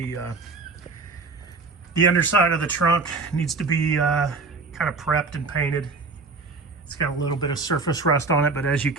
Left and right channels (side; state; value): left; quieter; 4.1 dB